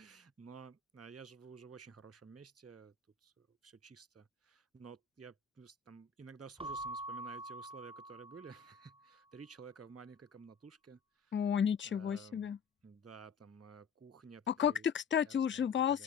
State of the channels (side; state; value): right; quieter; 6.8 dB